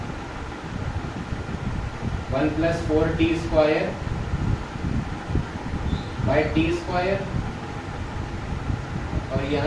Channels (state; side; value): identical; both; correlation 1.00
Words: 1 plus 4t square by T square, और